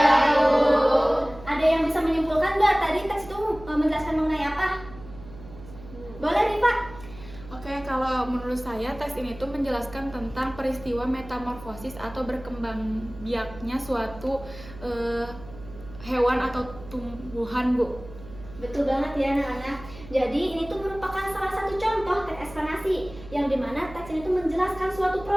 Bu. Ada yang bisa menyimpulkan nggak tadi teks itu menjelaskan mengenai apa? Boleh nih Pak? Oke, kalau menurut saya teks ini tuh menjelaskan tentang peristiwa metamorfosis atau berkembang biaknya suatu hewan atau tumbuhan, Bu. Betul banget ya anak-anak. Jadi ini tuh merupakan salah satu contoh teks eksplanasi yang dimana teks ini tuh menjelaskan suatu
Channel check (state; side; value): noise; right; hum, 17 dB below the sound